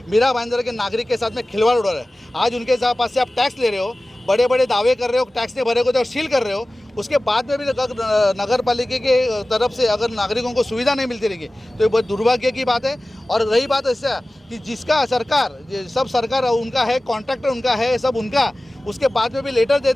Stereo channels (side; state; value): both; normal; correlation 0.97